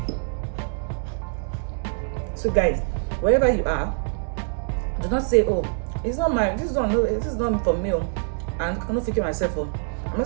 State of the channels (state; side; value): silent; left; 62 dB below the other